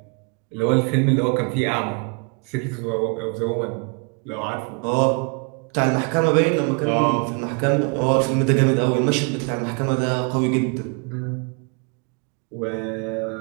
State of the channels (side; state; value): left; quieter; 36.1 dB